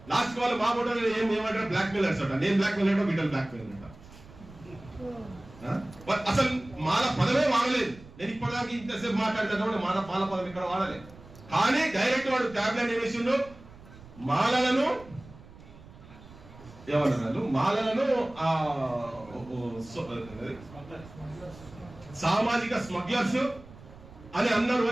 లాస్ట్ వాళ్ళు మా ఫోటో ఏమంటారు, బ్లాక్ మెయిలర్స్ అంట. నేను బ్లాక్ మెయిల్ అంటే వీళ్ళు బ్లాక్ మెయిల్ అంట. అసలు మాల పదమే వాడలేదు. నేను ఇప్పటిదాకా ఇంతసేపు మాట్లాడితే మాల పదం ఇక్కడ వాడలేదు, కానీ డైరెక్ట్ వాడు ట్యాబ్లెట్ ఏమేసిండు, మాలలను ఏమన్నారు, మాలలను సామాజిక స్మగ్లర్స్ అని అన్నారు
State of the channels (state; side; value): noise; right; rumble, 20 dB below the sound